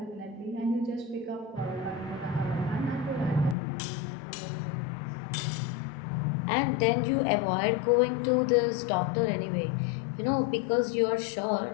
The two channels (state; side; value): drops out; right; at 3.6 s